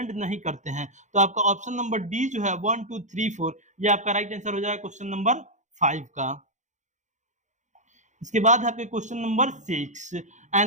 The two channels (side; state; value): left; late; 0.35 ms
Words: नहीं करते हैं। तो आपका ऑप्शन नंबर डी जो है 1 2 3 4 ये आपका राइट आंसर हो जाएगा क्वेश्चन नंबर 5 का। इसके बाद आपके question number 6,